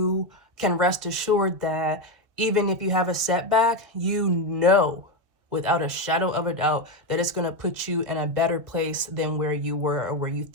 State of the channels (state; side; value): late; left; 2.0 ms